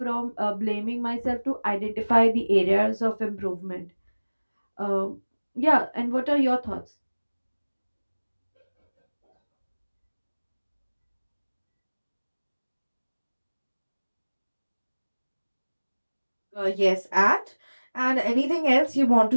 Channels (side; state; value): both; inverted; correlation -1.00